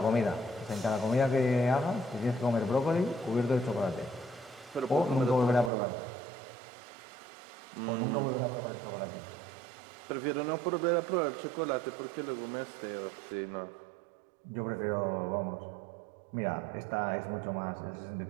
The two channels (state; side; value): drops out; left; at 5.7 s